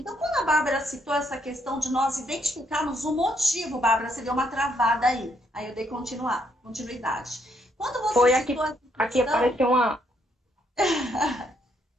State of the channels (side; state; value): both; normal; correlation 0.73